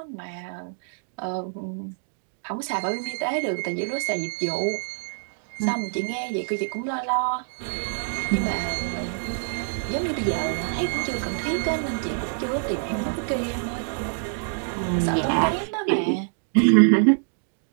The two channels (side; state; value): left; silent; digital silence